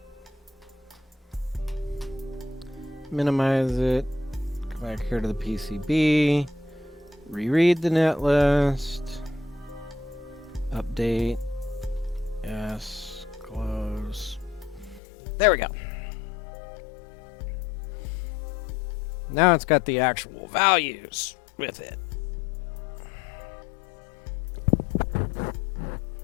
minimize it, go back here to the PCB, reread the net list, update, yes, close. There we go. Now it's got the actual values with it.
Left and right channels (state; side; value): drops out; right; at 15.0 s